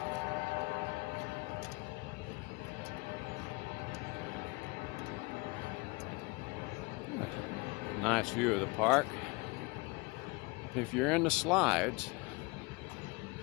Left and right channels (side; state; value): right; quieter; 26.0 dB